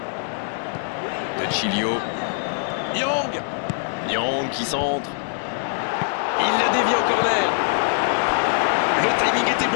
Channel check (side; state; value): right; silent; 64 dB below the other